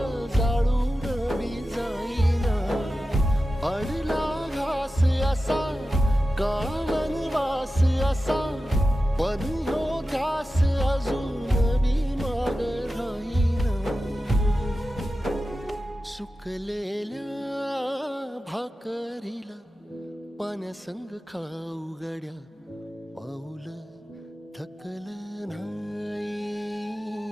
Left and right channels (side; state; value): both; normal; correlation 0.93